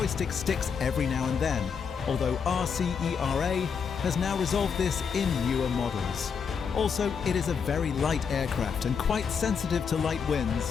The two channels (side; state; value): right; quieter; 6.4 dB